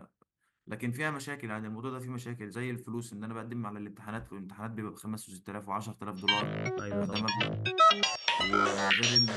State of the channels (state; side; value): identical; both; correlation 1.00